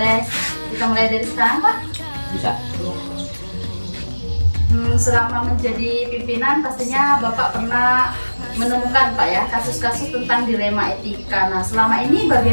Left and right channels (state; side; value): inverted; both; correlation -1.00